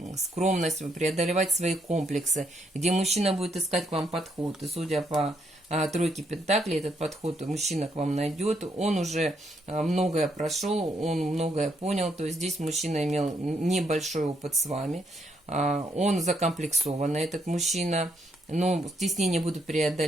скромность, преодолевать свои комплексы, где мужчина будет искать к вам подход. И судя по тройке пентаклей, этот подход мужчина к вам найдет. Он уже многое прошел, он многое понял. То есть здесь мужчина имел небольшой опыт с вами. Он закомплексованный, этот мужчина, но стеснения будут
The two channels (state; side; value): normal; both; correlation 0.75